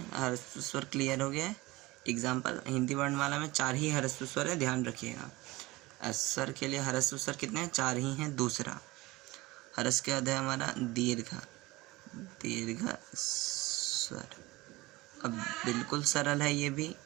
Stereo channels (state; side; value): quieter; left; 20.6 dB